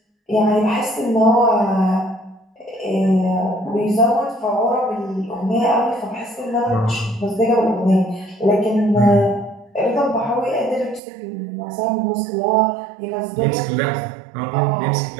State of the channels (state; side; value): drops out; left; at 11.0 s